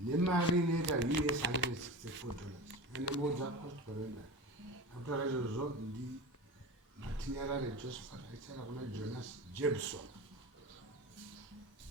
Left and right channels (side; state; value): both; normal; correlation 0.29